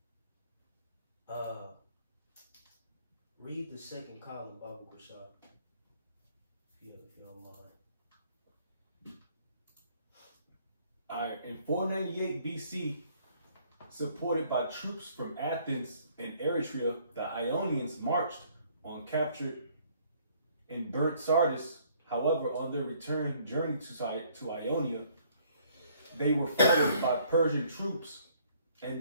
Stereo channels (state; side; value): inverted; both; correlation -0.62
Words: read the second column, Babu Bashar, if you don't mind. All right, in 498 BC, supported by troops from Athens and Eretria, the Ionians marched on captured and burnt Sardis. However, on their return journey to Ionia, they were followed by Persian troops and